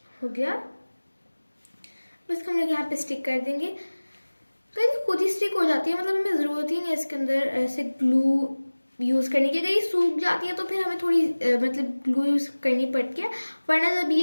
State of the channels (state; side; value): inverted; both; correlation -1.00